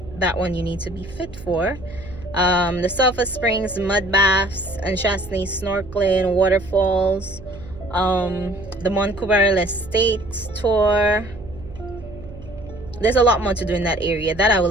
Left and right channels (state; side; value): noise; right; hum, 16 dB below the sound